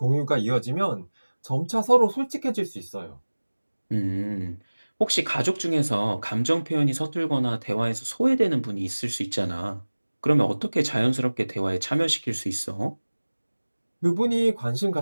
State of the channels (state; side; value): inverted; both; correlation -1.00